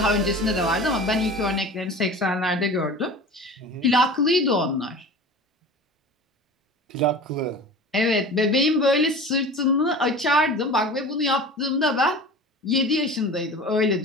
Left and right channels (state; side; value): normal; both; correlation 0.37